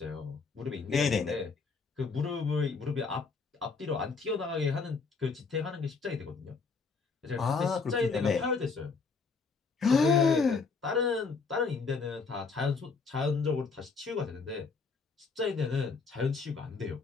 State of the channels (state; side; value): quieter; right; 4.7 dB